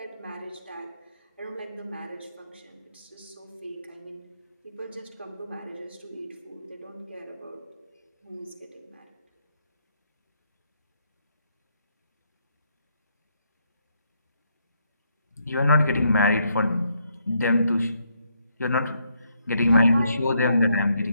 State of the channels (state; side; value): inverted; both; correlation -0.75